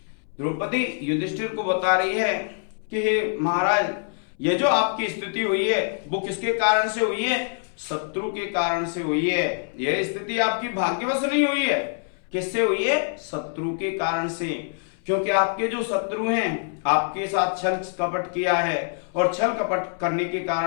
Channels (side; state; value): right; silent; 62 dB below the other